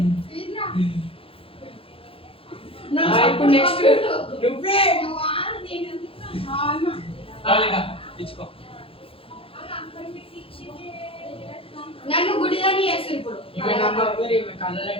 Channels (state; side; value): late; right; 0.27 ms